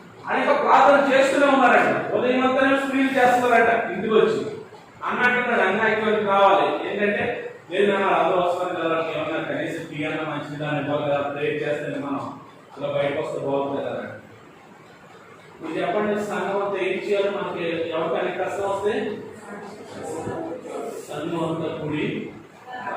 అనేక ప్రార్థన చేస్తూనే ఉన్నారంట. ఉదయం అంతా స్త్రీలు చేస్తున్నారంట. ఇంటికి వచ్చి అన్నట్టున్నాడు అన్నయ్యకి కావాలి ఏంటంటే లేదు అందరూ వస్తారు కదా, ఏమన్నా కనీసం టీ అన్న మంచిది దాన్ని బాగా ప్రేర్ చేస్తే మనం అలా బయటకు వస్తే బాగుంటుంది కదా. మీరు చెప్పండి, సంఘం అంతా ఏం చేయాలి? మనకి ఎవరికైనా కష్టం వస్తే సంఘం అంతా కూడి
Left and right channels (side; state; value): both; identical; correlation 1.00